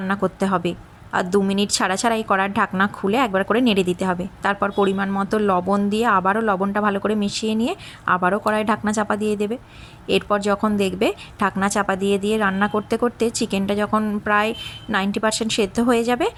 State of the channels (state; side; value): identical; both; correlation 1.00